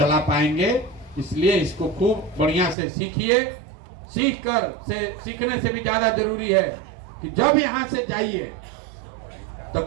पाएंगे। इसलिए इसको खूब बढ़िया से सीखिए। सीखने से भी ज्यादा जरूरी है कि जब यहाँ से जाइए तो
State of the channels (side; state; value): left; drops out; at 2.8 s